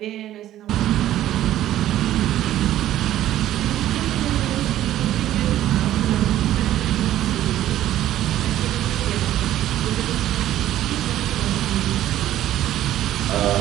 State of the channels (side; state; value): left; quieter; 13.0 dB